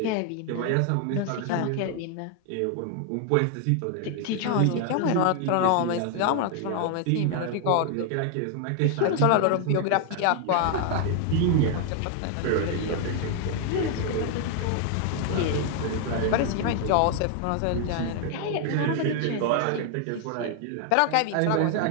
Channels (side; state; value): both; different; correlation 0.00